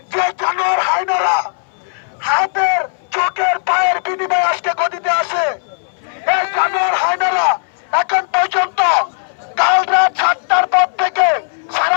যে জানোয়ার হায়নারা হাতের চোখের পায়ের বিনিময়ে আজকে গদিতে আসে, এই জানোয়ার হায়নারা এখন পর্যন্ত কাল রাত 7টার পর থেকে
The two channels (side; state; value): right; silent; 63 dB below the other